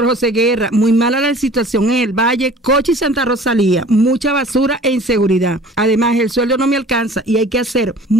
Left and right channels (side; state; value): both; normal; correlation 0.46